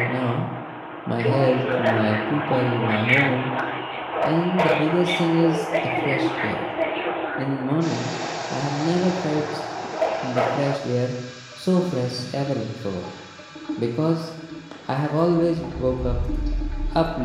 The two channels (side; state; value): both; identical; correlation 1.00